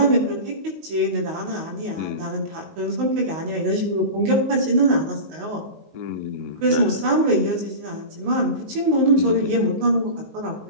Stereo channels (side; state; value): left; late; 19 ms